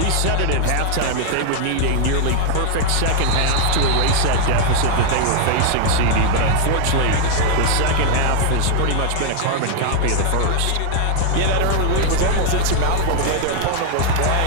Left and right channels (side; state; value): both; different; correlation 0.00